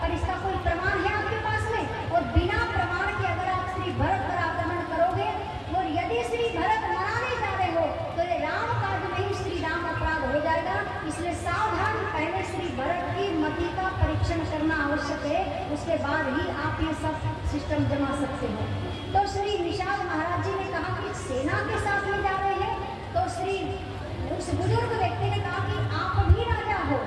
और इसका कोई प्रमाण है आपके पास में? और बिना प्रमाण के अगर आप श्री भरत पर आक्रमण करोगे, और यदि श्री भरत मनाने जा रहे हो तो ये राम काज में ही श्री राम अपराध हो जाएगा। इसलिए सावधान, पहले श्री भरत की मति का परीक्षण करना आवश्यक है, उसके बाद ही आप ये सब सिस्टम जमा सकते हो। तो श्री निषाद महाराज जी ने कहा कि सेना के साथ में जा रहे हैं, तो श्री उस बुजुर्ग व्यक्ति ने कहा कि आप भी राजा हो,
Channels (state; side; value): identical; both; correlation 1.00